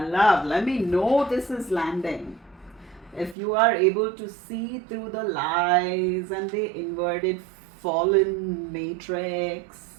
love, let me know this is landing. If you are able to see through the lies and the inverted fallen matrix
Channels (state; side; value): drops out; left; at 3.4 s